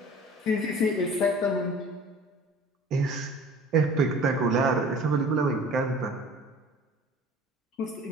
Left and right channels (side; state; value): both; normal; correlation 0.45